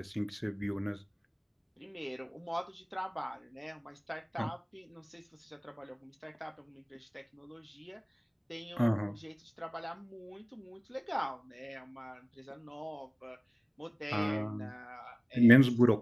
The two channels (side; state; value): both; identical; correlation 1.00